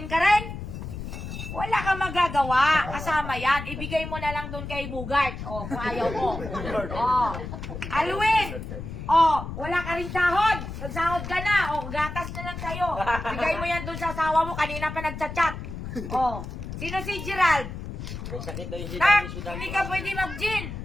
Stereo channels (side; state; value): left; noise; rumble, 8 dB below the sound